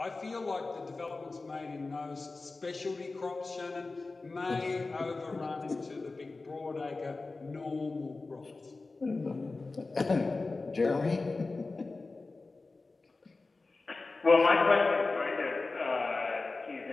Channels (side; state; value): right; quieter; 3.6 dB